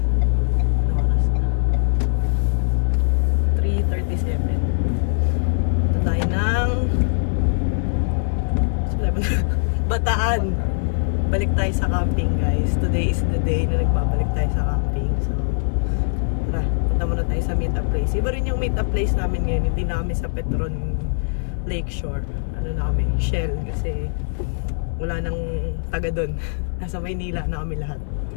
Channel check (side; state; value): right; silent; 64 dB below the other